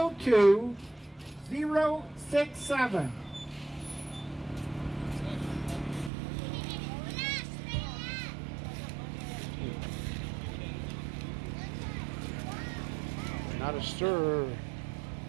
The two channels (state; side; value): drops out; left; at 6.1 s